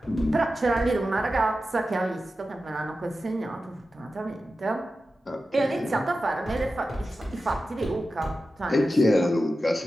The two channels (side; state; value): both; normal; correlation 0.92